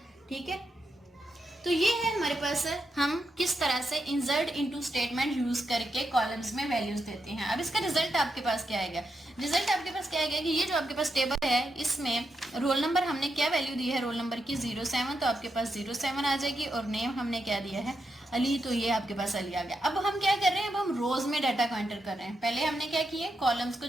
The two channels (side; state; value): both; normal; correlation 0.84